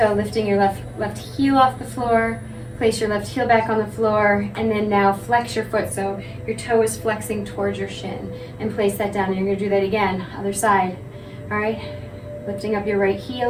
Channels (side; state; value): both; identical; correlation 1.00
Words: lifting your left heel off the floor, place your left heel back on the floor, and then now flex your foot so your toe is flexing towards your shin, and place that down. And you're gonna do that again, other side. All right, lifting up your right